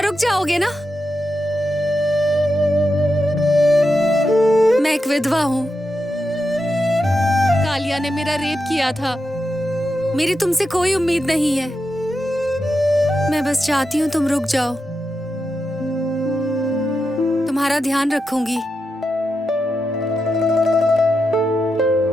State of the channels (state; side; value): normal; both; correlation 0.87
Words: रुक जाओगे ना? मैं एक विधवा हूँ। कालिया ने मेरा रेप किया था। मेरी तुमसे कोई उम्मीद नहीं है। मैं बस चाहती हूँ तुम रुक जाओ। तुम्हारा ध्यान रखूंगी।